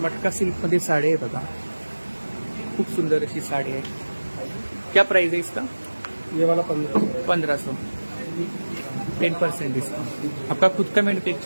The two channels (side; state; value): both; inverted; correlation -1.00